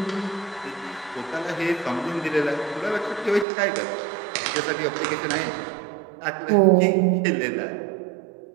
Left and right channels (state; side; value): drops out; left; at 3.5 s